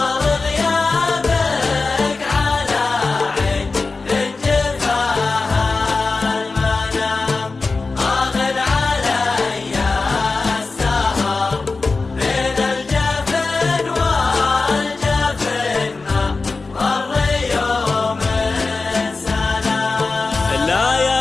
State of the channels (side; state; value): right; quieter; 3.9 dB